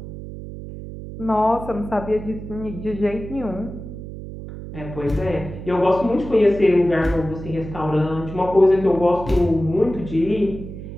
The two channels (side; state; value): right; noise; hum, 11 dB below the sound